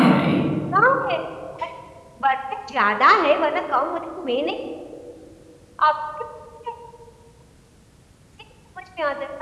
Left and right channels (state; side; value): identical; both; correlation 1.00